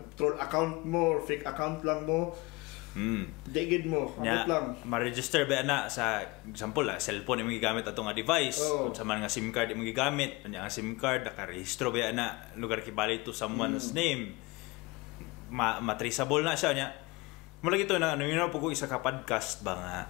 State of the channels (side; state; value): right; quieter; 24.0 dB